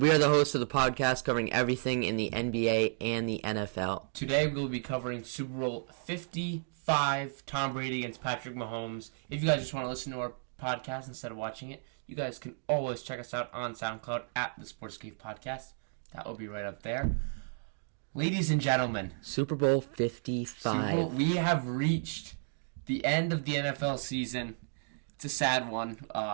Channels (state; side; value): silent; left; digital silence